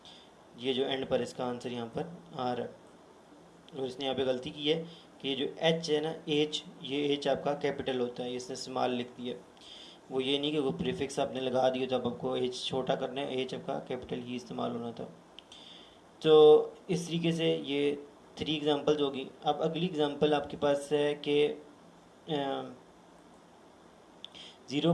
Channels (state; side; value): identical; both; correlation 1.00